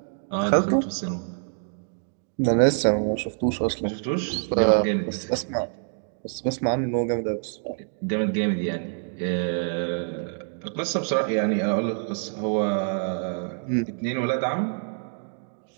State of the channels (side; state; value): left; silent; digital silence